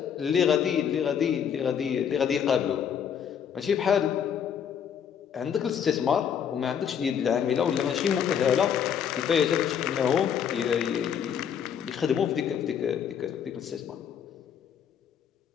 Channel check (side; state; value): right; quieter; 8.2 dB